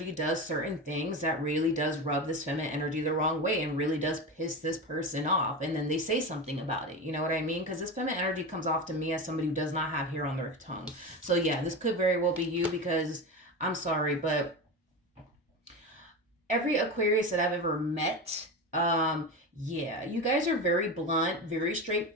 does certain things that really does rub this feminine energy the wrong way and really does piss this person off. And then they say something about it. You know what I mean? Because this feminine energy comes off to me as somebody who does not have hair on their tongue. So yeah, this could very well be you, because I'm sorry, but every Aquarius that I've ever met, you guys are very blunt, very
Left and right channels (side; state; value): both; normal; correlation 0.23